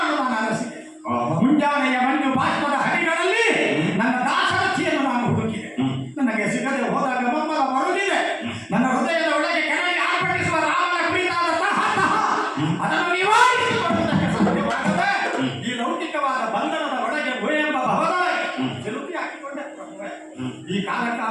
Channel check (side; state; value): both; identical; correlation 1.00